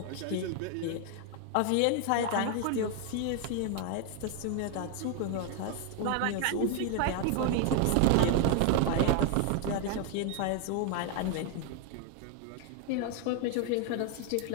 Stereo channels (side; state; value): both; different; correlation 0.00